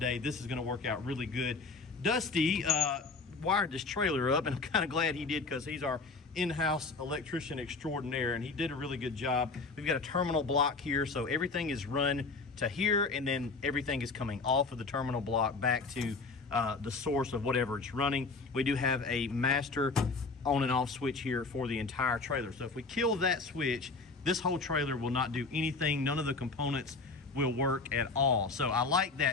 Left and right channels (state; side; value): quieter; right; 4.0 dB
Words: This is going to work out really good. Dusty wired this trailer up, and I'm kind of glad he did, because he's our in-house electrician extraordinaire, and he did a really good job. We've got a terminal block here, so everything is run to here, and then everything is coming off of the terminal block back to the source of whatever it's running. We do have a master on and off switch here for the entire trailer. So if we kill that switch, this whole trailer will not do anything. None of the components will work at all. So I like